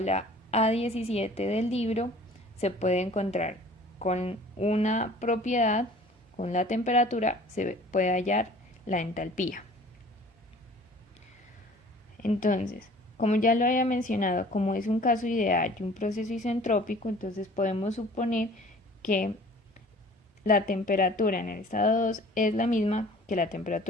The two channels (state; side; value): normal; both; correlation 0.48